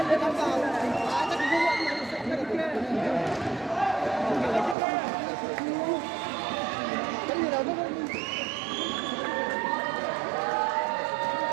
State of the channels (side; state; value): left; drops out; at 4.8 s